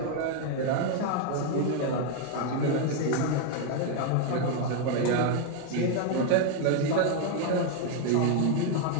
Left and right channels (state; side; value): different; both; correlation 0.00